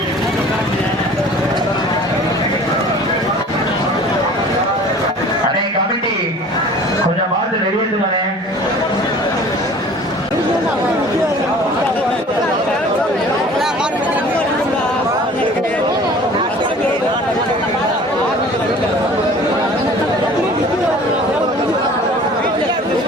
அண்ணே கமிட்டி கொஞ்சம் பார்த்து வெளியேற்றுவானே.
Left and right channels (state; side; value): normal; both; correlation 0.46